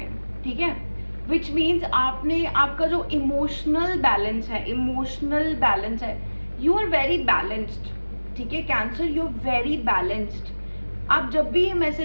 हैं, ठीक है। विच मीन्स आपने, आपका जो इमोशनल बैलेंस है, यू आर वेरी बैलेंस्ड, ठीक है। Cancer, you are very balanced. आप जब भी ये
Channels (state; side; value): inverted; both; correlation -1.00